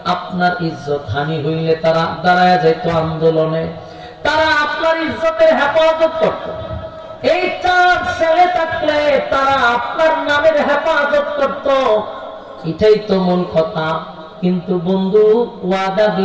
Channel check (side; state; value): both; identical; correlation 1.00